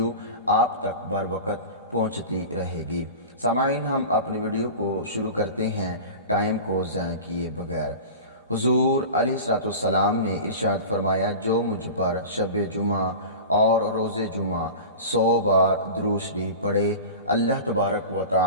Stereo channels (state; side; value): inverted; both; correlation -0.33